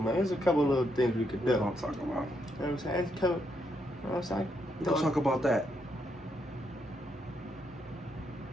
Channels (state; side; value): normal; both; correlation 0.78